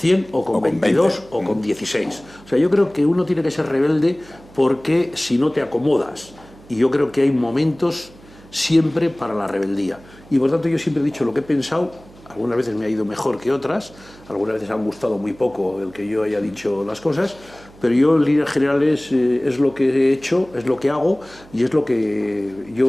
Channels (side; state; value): right; noise; hum, 23 dB below the sound